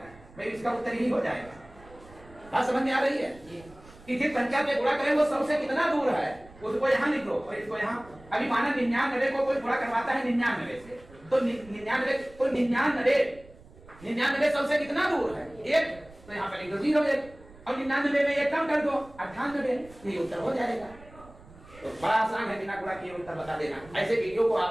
भाई इसका उत्तर यही हो जाएगा। बात समझ में आ रही है कि जिस संख्या से गुणा करें वो 100 से कितना दूर है उसको यहाँ लिख दो और इसको यहाँ। अभी माना 99 को कोई गुणा करवाता है 99 से तो 99 को 99 100 से कितना दूर है 1, तो यहाँ पर लिख दो 0 और 99 में एक कम कर दो 98। यही उत्तर हो जाएगा। तो बड़ा आसान है, बिना गुणा किए उत्तर बता देना। ऐसे वीडियो को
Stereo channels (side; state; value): right; noise; rumble, 22 dB below the sound